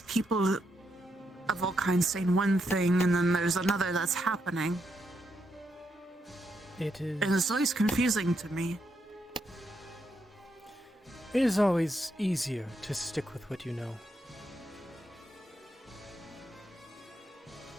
people of all kinds saying one thing and then there's another that's happening. It is... And it's always confusing to me. It is always easier to stick with what you know.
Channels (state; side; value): normal; both; correlation 0.80